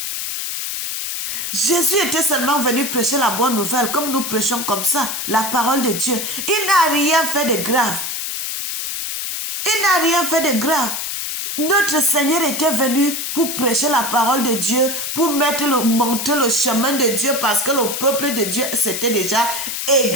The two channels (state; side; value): noise; left; hiss, 4 dB below the sound